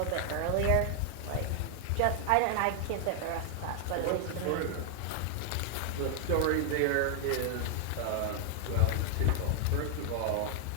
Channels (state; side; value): different; both; correlation 0.00